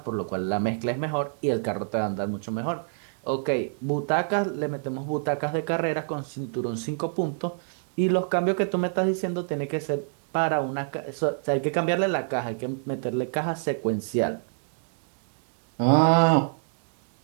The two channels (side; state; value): left; silent; digital silence